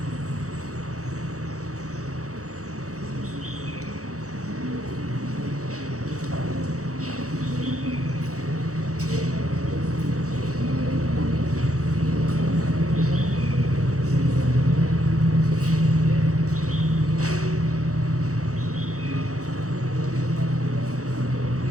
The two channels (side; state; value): left; late; 0.65 ms